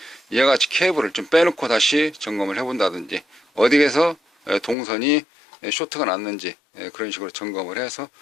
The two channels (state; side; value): drops out; right; at 4.8 s